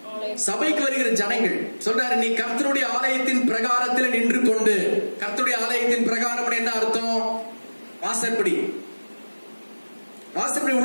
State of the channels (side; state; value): both; inverted; correlation -1.00